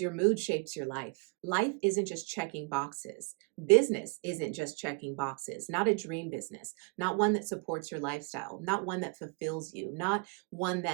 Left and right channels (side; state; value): left; quieter; 32.4 dB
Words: your mood shapes your life. Life isn't just checking boxes. Business isn't just checking boxes, not a dream business, not one that supports your lifestyle, not one that fulfills you, not one